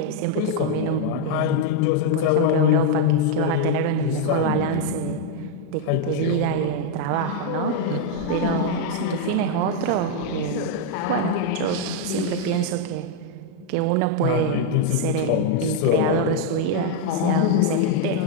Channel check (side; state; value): both; different; correlation 0.00